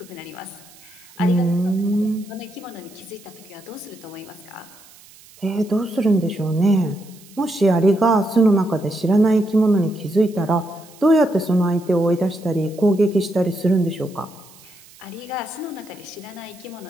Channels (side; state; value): right; noise; hiss, 24 dB below the sound